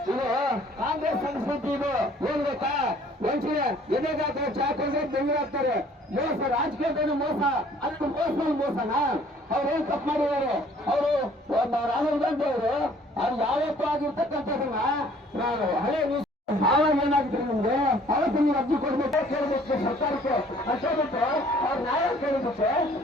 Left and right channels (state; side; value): normal; both; correlation 0.56